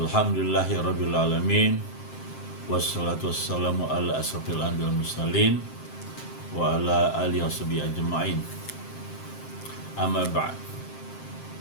alamin. Wassalatu wassalamu ala asrofil anbiya'i wal mursalin wa ala alihi washabihi ajma'in. Amma ba'd.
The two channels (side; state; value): right; late; 7.6 ms